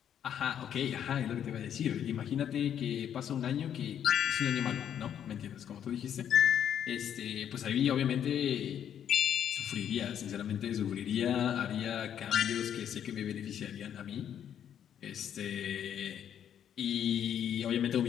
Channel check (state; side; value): quieter; right; 9.4 dB